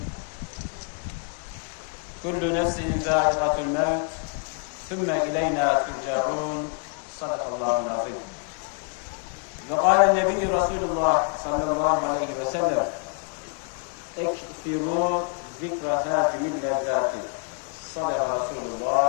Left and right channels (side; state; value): right; quieter; 38.7 dB